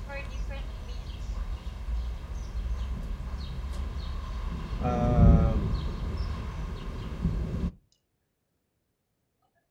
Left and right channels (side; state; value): both; identical; correlation 1.00